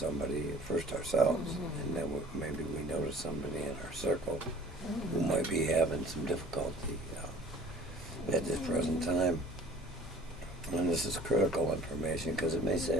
first ourselves, and then maybe we notice somebody in our circle who might be having some difficulty at this present time. And this is critical information because it may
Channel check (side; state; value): both; normal; correlation 0.50